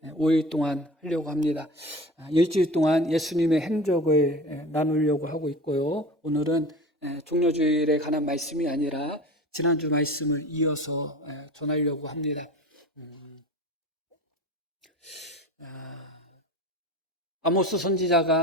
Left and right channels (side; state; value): both; normal; correlation 0.36